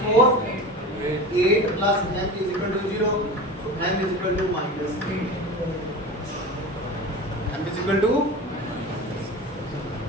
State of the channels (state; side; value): normal; both; correlation 0.31